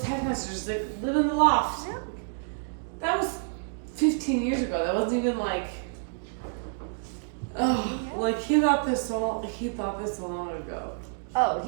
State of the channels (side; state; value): left; silent; digital silence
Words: messages like, "Live in the loft." That was 15 years ago. That wasn't even like. Oh, like he thought this so long ago. Oh,